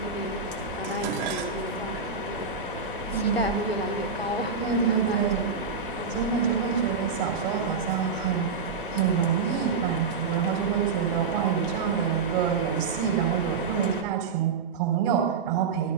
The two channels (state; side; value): quieter; left; 5.3 dB